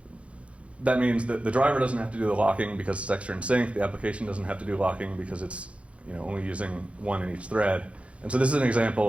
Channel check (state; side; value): late; left; 0.062 ms